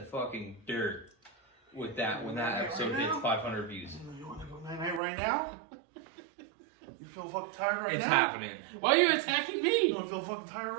fucking dirt with that when that episode hits 500 views. You want to go night-night right now? You feel fucking tired right It's now? happening. Why are you attacking You me? don't feel fucking tired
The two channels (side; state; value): left; drops out; at 5.0 s